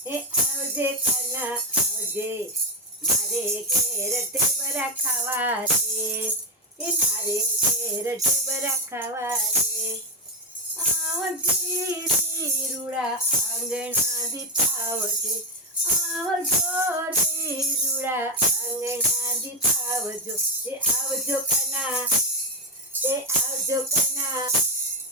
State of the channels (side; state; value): both; normal; correlation 0.09